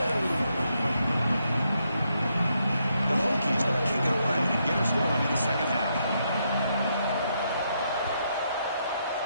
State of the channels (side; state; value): both; inverted; correlation -0.78